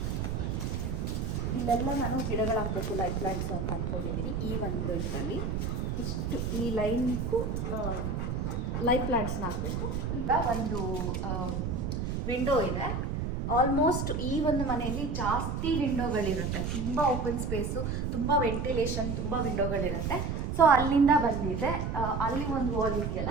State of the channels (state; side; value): noise; right; rumble, 2 dB below the sound